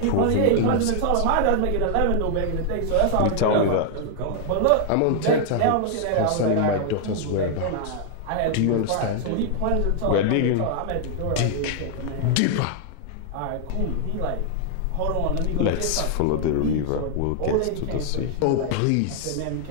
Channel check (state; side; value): different; both; correlation 0.00